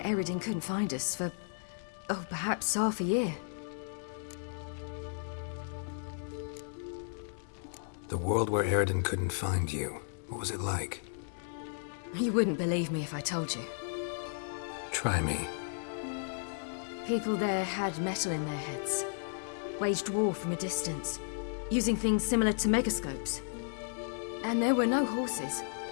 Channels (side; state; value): right; silent; digital silence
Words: Eredin couldn't find us for, oh, perhaps half a year. The world where Eredin couldn't find you. What was it like? You wouldn't believe me if I told you. Try me. People there had metal in their heads. Waged war from a distance, using things similar to megascopes. And there were no horses.